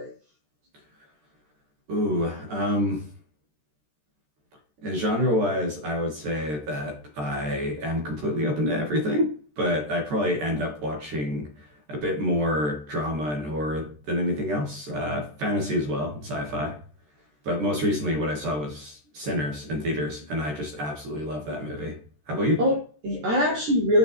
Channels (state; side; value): late; left; 13 ms